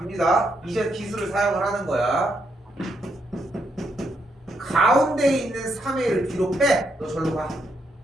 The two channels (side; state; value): both; normal; correlation 0.78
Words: 이제 기술을 사용을 하는 거야. 가운데에 있는 3a를 뒤로 빼. 너 절로 가.